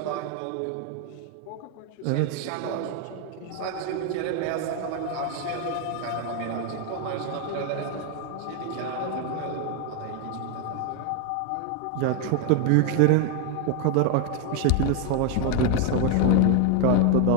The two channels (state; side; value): different; both; correlation 0.01